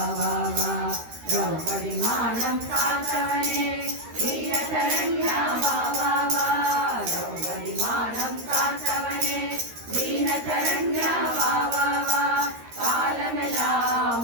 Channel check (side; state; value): left; late; 13 ms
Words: வா வா திரௌபதி மானம் காத்தவனே வீரசரண்யா வா வா வா திரௌபதி மானம் காத்தவனே வீரசரண்யா வா வா வா காலமெல்லாம்